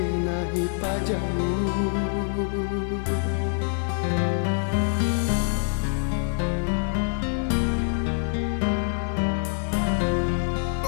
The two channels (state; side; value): silent; right; digital silence